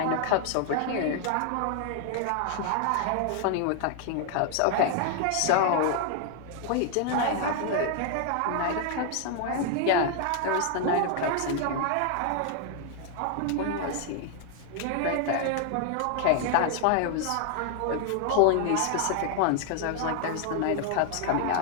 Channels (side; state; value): both; different; correlation 0.00